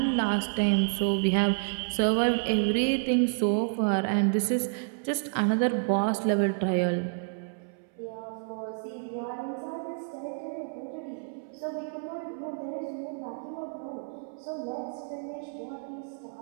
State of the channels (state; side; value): silent; left; 58 dB below the other